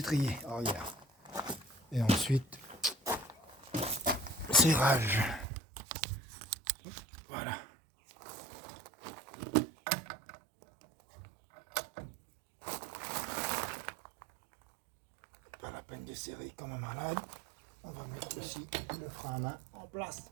arrière. Et ensuite, serrage. Voilà. Pas la peine de serrer comme un malade. On va mettre aussi le frein à main en place.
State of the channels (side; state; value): left; drops out; at 5.5 s